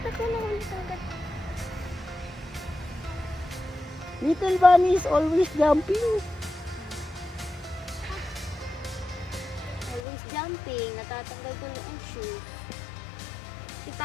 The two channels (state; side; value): drops out; right; at 10.0 s